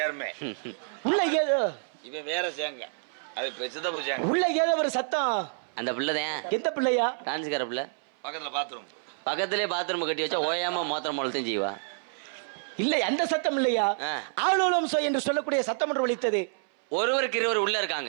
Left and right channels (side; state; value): left; silent; 59 dB below the other